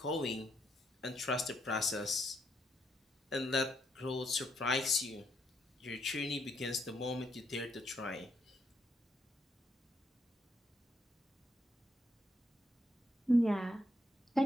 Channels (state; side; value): normal; both; correlation 0.76